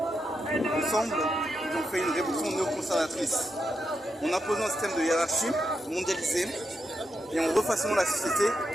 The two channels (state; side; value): normal; both; correlation 0.85